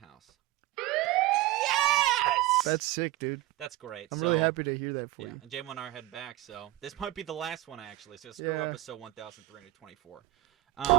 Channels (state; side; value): quieter; left; 16.6 dB